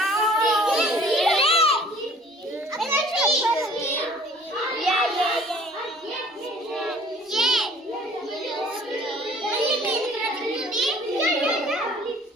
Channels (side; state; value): both; normal; correlation 0.52